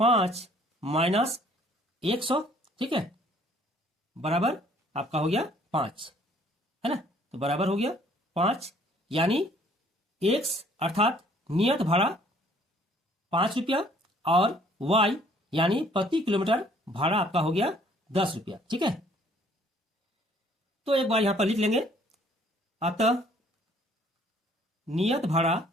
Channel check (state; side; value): normal; both; correlation 0.60